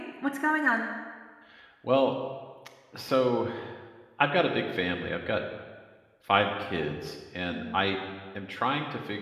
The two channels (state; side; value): identical; both; correlation 1.00